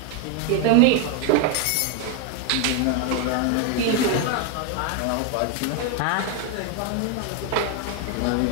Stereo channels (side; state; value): both; different; correlation 0.01